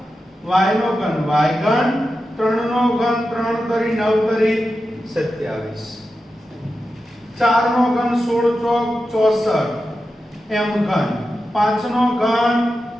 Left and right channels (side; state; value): both; normal; correlation 0.91